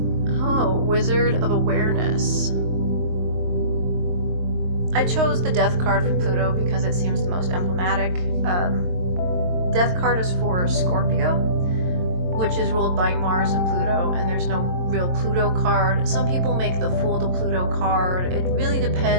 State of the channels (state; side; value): late; left; 22 ms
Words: Oh, Wizard of Awareness. I chose the Death card for Pluto because it seems the most emblematic. Death card is for Scorpio, which is ruled by Mars and Pluto, and there's no real Pluto card. Some people make the Fool to Pluto card. It really